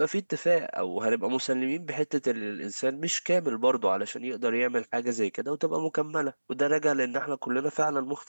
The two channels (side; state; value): both; inverted; correlation -1.00